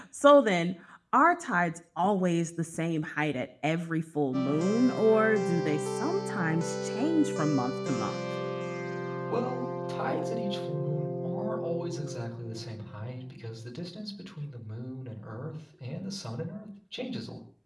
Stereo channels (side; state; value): both; identical; correlation 1.00